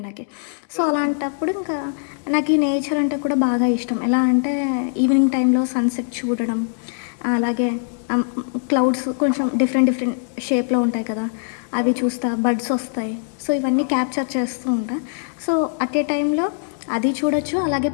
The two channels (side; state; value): right; silent; digital silence